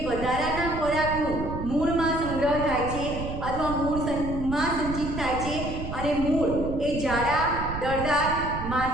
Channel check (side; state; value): right; noise; rumble, 7 dB below the sound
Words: વધારાના ખોરાકનું મૂળમાં સંગ્રહ થાય છે અથવા મૂળમાં સંચિત થાય છે અને મૂળ એ જાડા, દળદાર,